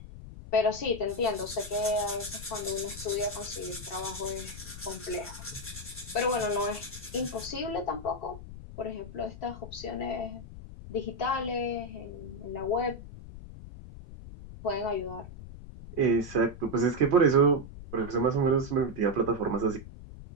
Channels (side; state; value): left; noise; rumble, 13 dB below the sound